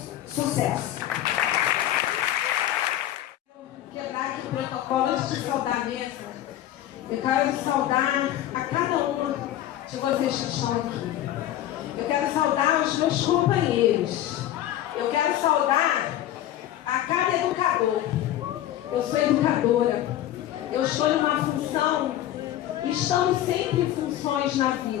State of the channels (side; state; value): right; quieter; 12.9 dB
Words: Sucesso! Quebrar aqui o protocolo antes de saudar a mesa. Eu quero saudar a cada uma de vocês que estão aqui. Eu quero saudar os meus companheiros. Eu quero saudar a cada educador. Eu sou educadora. Eu estou em uma função e estamos sempre em funções na